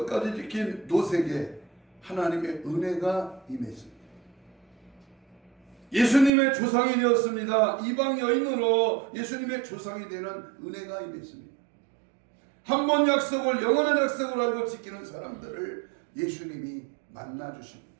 지킨 롯에게 하나님의 은혜가 임했습니다. 예수님의 조상이 되었습니다. 이방 여인으로 예수님의 조상이 되는 은혜가 임했습니다. 한 번 약속을 영원한 약속을 알고 지키는 사람들을 예수님이 만나주십니다.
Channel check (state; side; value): drops out; left; at 6.3 s